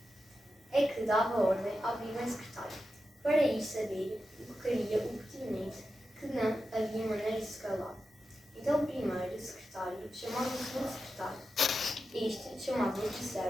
É que dava ordem ao primeiro secretário para ir saber o que queria o pertinente, que não havia maneira de se calar. Então o primeiro secretário chamava o segundo secretário. Este chamava o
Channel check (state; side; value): normal; both; correlation 0.90